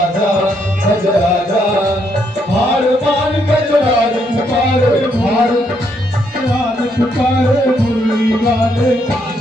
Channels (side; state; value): both; normal; correlation 0.74